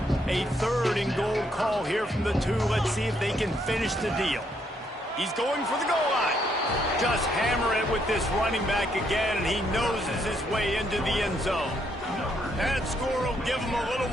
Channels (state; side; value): normal; both; correlation 0.73